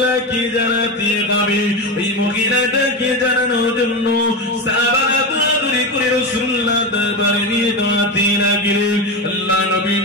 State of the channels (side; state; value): both; normal; correlation 0.17